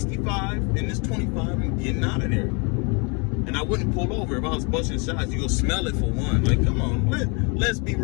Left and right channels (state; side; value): quieter; right; 32.9 dB